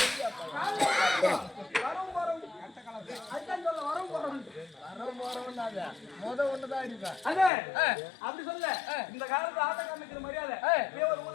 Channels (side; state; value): right; drops out; at 7.5 s